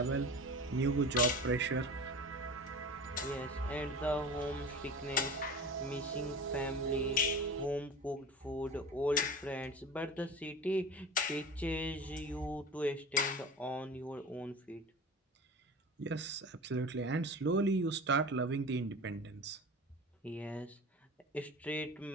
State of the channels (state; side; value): normal; both; correlation 0.34